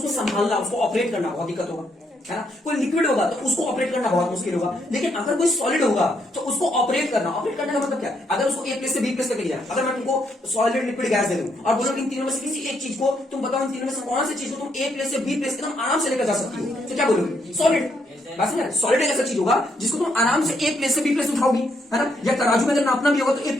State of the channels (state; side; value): normal; both; correlation 0.75